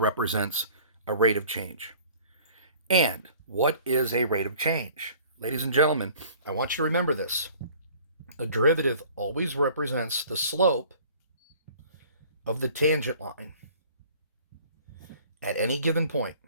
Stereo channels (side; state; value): both; inverted; correlation -0.50